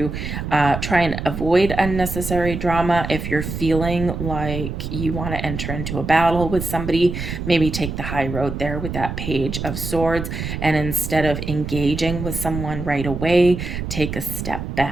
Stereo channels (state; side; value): noise; right; rumble, 5 dB below the sound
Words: try and avoid unnecessary drama. If you're feeling like you want to enter into a battle with somebody, maybe take the high road there with that Page of Swords, and instead of engaging with someone right away, take a step